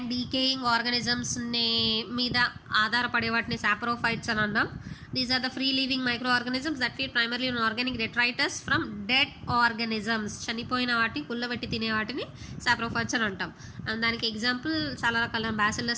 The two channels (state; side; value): identical; both; correlation 1.00